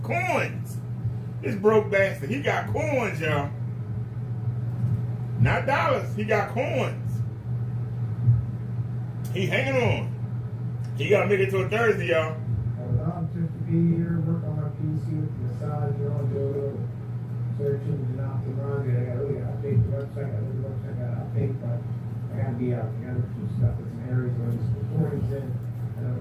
Coins. This broke bastard. He got coins, y'all. Not dollars. He got coins. He hanging on. He gotta make it till Thursday, y'all. I'm just to be here, work on my PC with the massage, do a little searching and optimizing. I gotta really update the website. I gotta update, but I gotta be out. I gotta do some stuff in some areas where there's recordings in. I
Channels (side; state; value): both; identical; correlation 1.00